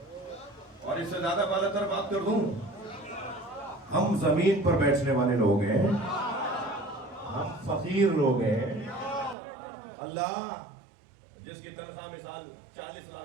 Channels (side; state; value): left; drops out; at 9.3 s